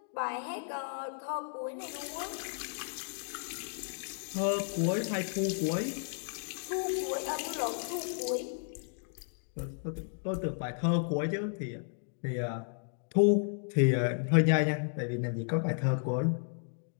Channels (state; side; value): silent; right; digital silence